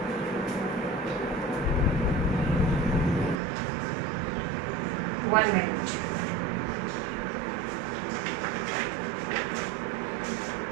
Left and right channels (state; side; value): drops out; left; at 3.4 s